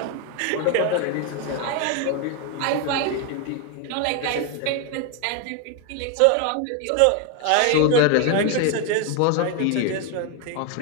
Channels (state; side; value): different; both; correlation 0.01